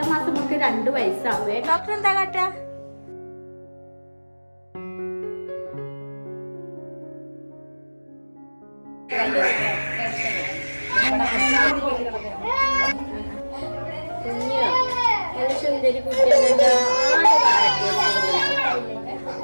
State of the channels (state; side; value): inverted; both; correlation -1.00